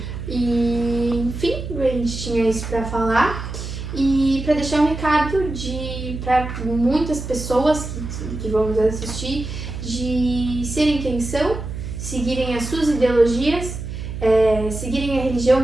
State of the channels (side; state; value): right; noise; hum, 7 dB below the sound